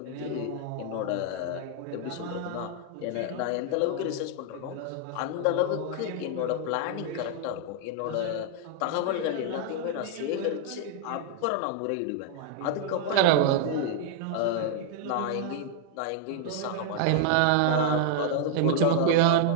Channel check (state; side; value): different; both; correlation 0.00